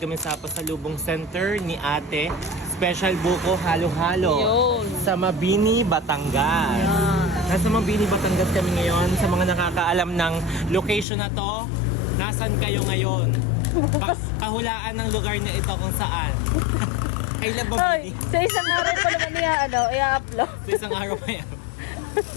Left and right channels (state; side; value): drops out; right; at 11.1 s